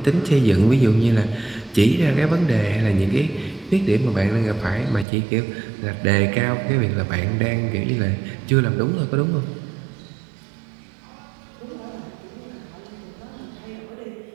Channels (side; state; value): left; drops out; at 5.1 s